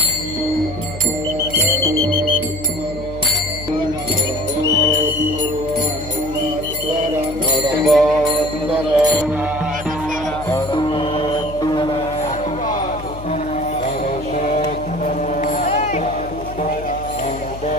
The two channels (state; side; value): noise; left; hum, 12 dB below the sound